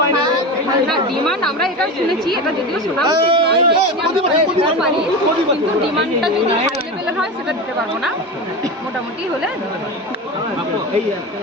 না না ডিমান্ড আমরা এটা শুনেছি, এটা যদিও শোনা উচিত নয়, দিতে পারি, কিন্তু ডিমান্ডটা যদি হাই লেভেলের হয় সেটা দিতে পারবো না, মোটামুটি হলে দিতে পারবো। এই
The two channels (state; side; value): normal; both; correlation 0.24